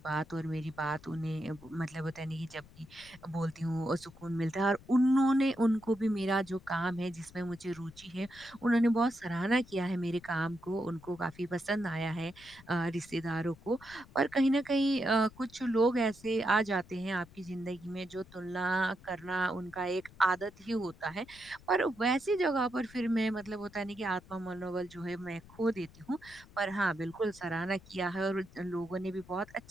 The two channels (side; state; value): left; noise; rumble, 22 dB below the sound